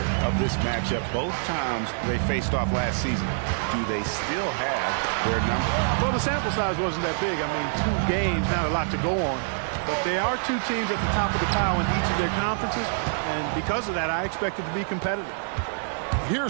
of this matchup both times they faced off last season. Do they still have their number? Well, the sample size wasn't that big. I mean, 2 games, not a lot to go on. But they are 2 teams at the top of the pile in each of their conferences. And because of that, I expect it to be competitive.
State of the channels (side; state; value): left; silent; 61 dB below the other